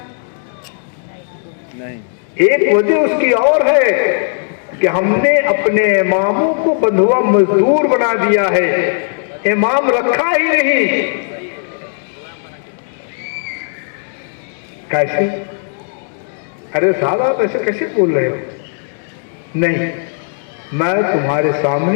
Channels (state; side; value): silent; right; digital silence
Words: नहीं। एक वजह उसकी और है कि हमने अपने इमामों को बंधुआ मजदूर बना दिया है, इमाम रखा ही नहीं। कैसे? अरे साहब आप ऐसे कैसे बोल रहे हो? नहीं, मैं तुम्हारे